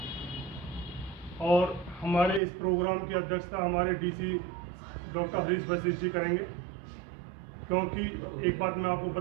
और हमारे इस प्रोग्राम की अध्यक्षता हमारे डीसी डॉक्टर हरीश वशिष्ठ जी करेंगे। क्योंकि एक बात मैं आपको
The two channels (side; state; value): left; drops out; at 2.4 s